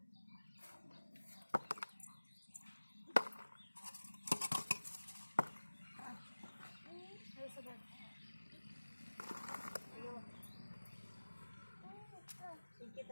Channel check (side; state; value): both; inverted; correlation -1.00